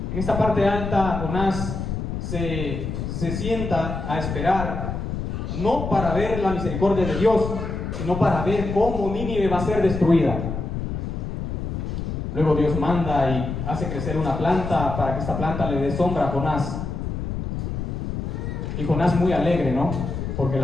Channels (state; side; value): noise; left; rumble, 4 dB below the sound